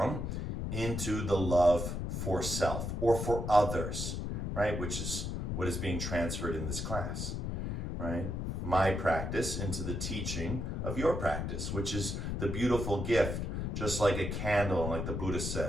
into the love for self or for others, right? Which is what is being transferred in this class, right? My practice into the teaching of your practice, which is the beautiful gift, just like a candle, like the Buddha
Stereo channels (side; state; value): left; noise; rumble, 2 dB below the sound